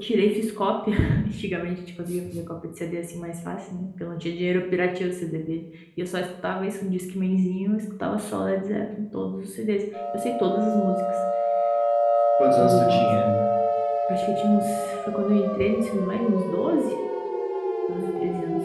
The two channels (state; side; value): identical; both; correlation 1.00